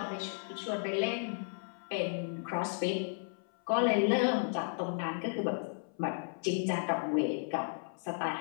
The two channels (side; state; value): right; silent; 55 dB below the other